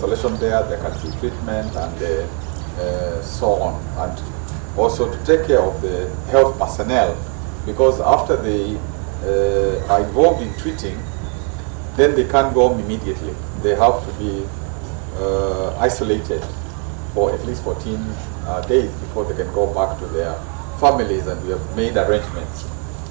there, there can be treatment, and so on. And also to take care of the health personnel, because after they are involved in treating, then they can't go home immediately. They have to be isolated for at least 14 days before they can go back to their families, and we have made arrangements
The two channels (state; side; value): quieter; left; 39.7 dB